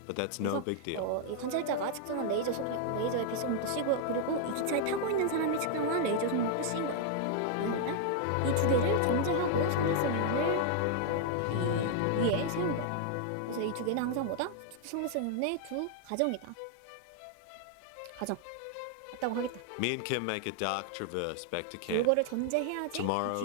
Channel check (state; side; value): different; both; correlation 0.00